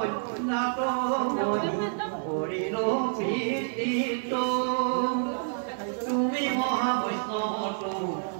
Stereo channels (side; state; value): left; silent; 59 dB below the other